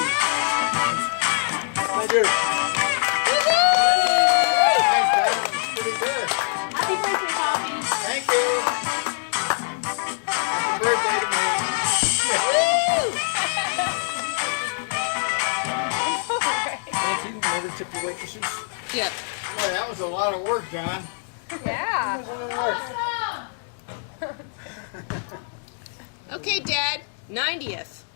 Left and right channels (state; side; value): silent; right; digital silence